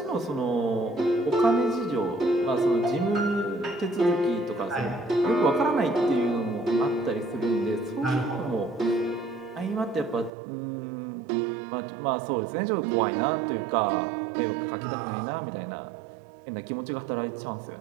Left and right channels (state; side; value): drops out; left; at 10.3 s